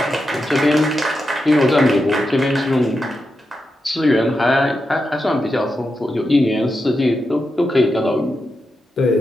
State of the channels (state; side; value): normal; both; correlation 0.87